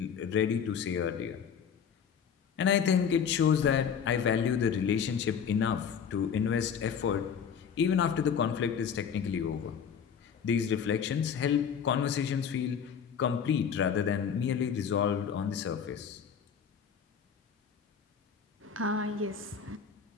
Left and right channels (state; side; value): quieter; right; 7.3 dB